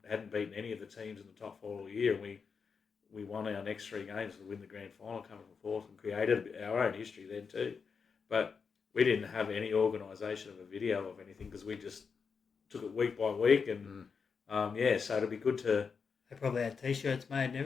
hadn't beaten any of the teams in the top four all year, and we won our next three games to win the grand final, coming from fourth, and created our own history then too. But we didn't have any organisation of a video of anything because we just took it week by week, and so it'd be good to. They probably had T-shirts made and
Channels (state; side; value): quieter; right; 5.7 dB